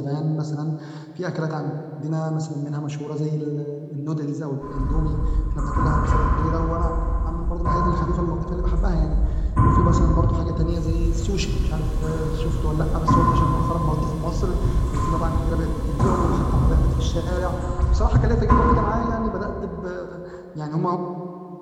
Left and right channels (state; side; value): identical; both; correlation 1.00